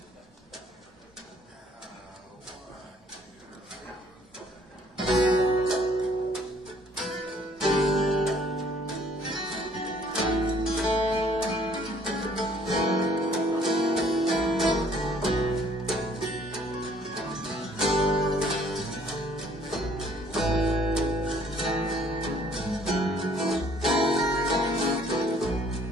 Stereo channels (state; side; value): normal; both; correlation 0.60